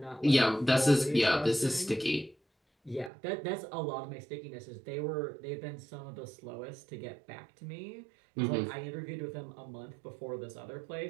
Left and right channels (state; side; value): drops out; left; at 3.1 s